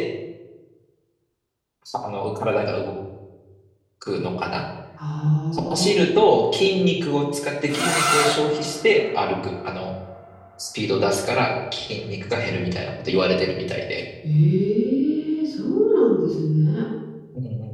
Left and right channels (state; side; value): identical; both; correlation 1.00